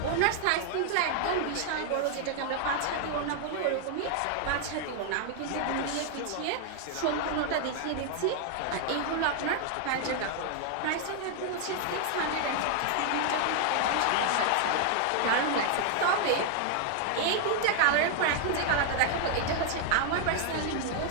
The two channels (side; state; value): both; different; correlation 0.00